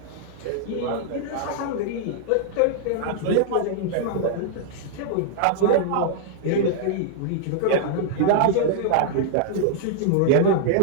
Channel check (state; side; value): different; both; correlation -0.01